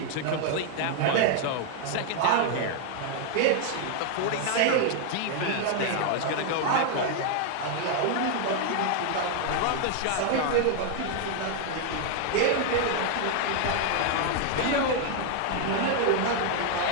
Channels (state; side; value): different; both; correlation 0.00